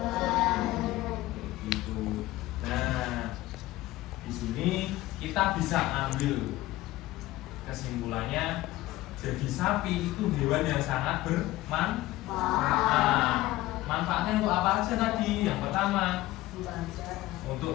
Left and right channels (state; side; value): quieter; right; 17.1 dB